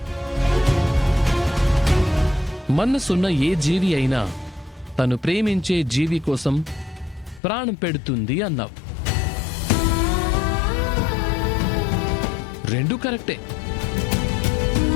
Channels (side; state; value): right; drops out; at 7.4 s